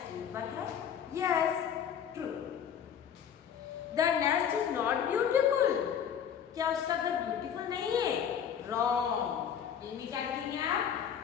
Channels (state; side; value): quieter; right; 8.5 dB